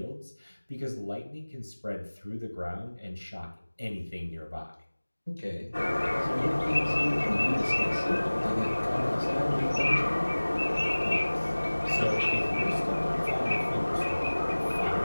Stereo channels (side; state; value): both; inverted; correlation -1.00